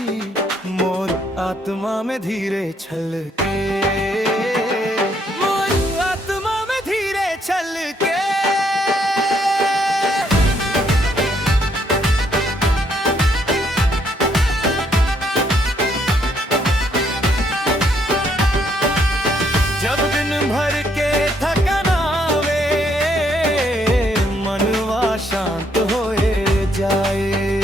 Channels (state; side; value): normal; both; correlation 0.71